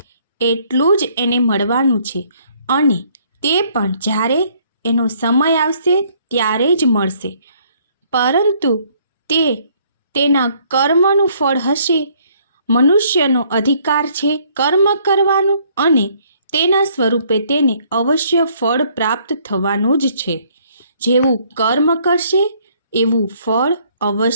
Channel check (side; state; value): both; inverted; correlation -0.64